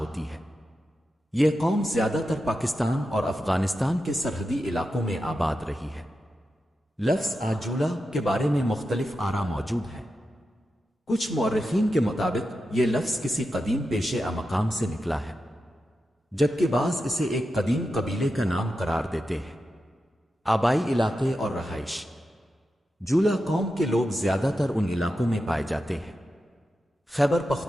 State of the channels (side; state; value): both; normal; correlation 0.90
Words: ہے۔ یہ قوم زیادہ تر پاکستان اور افغانستان کے سرحدی علاقوں میں آباد رہی ہے۔ لفظ آجولا کے بارے میں مختلف آراء موجود ہیں۔ کچھ مورخین کے مطابق یہ لفظ کسی قدیم پیشے مقام سے نکلا ہے، جبکہ بعض اسے ایک قدیم قبیلے کا نام قرار دیتے ہیں۔ آبائی علاقے اور رہائش۔ جولا قوم کے لوگ زیادہ تر ان علاقوں میں پائے جاتے ہیں: خیبر